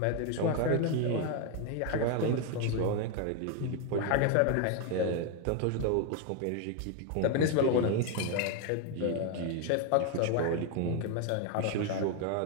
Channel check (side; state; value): both; different; correlation 0.01